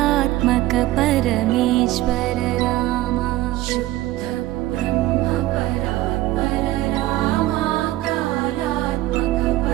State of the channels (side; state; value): left; quieter; 16.4 dB